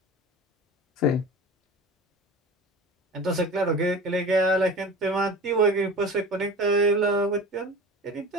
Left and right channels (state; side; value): normal; both; correlation 0.35